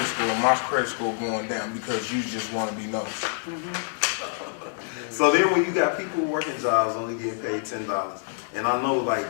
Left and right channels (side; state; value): right; silent; digital silence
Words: score and my credit score going down because you just want to be nosy? So then when you got people working jobs only getting paid $10, and I know like